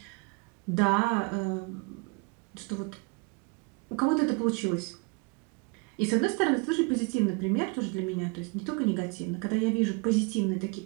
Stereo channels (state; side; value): quieter; left; 30.0 dB